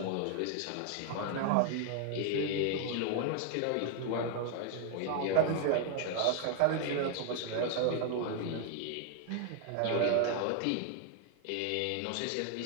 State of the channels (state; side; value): different; both; correlation 0.00